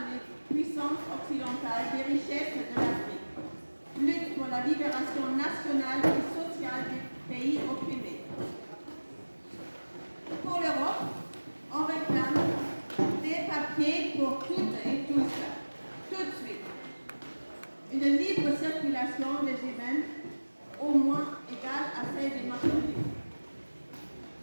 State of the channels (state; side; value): inverted; both; correlation -1.00